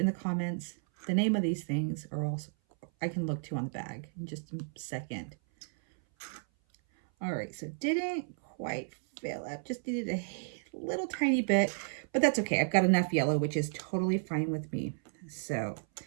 the comments the name of these things, or also I can look too on the bag in just a second. All right, so didn't quite fill up, just needed a little tiny bit, but that's okay. I've got enough yellow, which is totally fine with me. So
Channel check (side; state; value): left; silent; 56 dB below the other